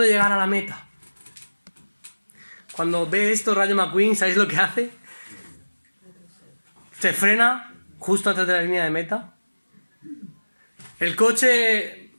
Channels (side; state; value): both; inverted; correlation -1.00